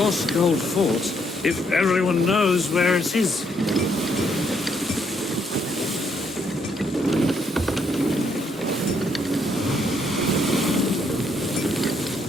Gold Fort if everyone knows where it is?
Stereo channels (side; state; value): both; normal; correlation 0.73